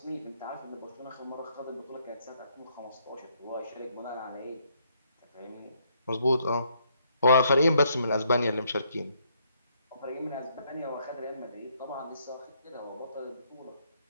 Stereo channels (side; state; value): both; inverted; correlation -0.71